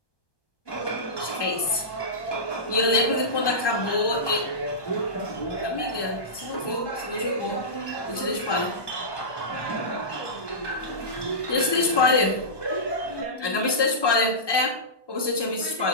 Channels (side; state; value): right; late; 1.2 ms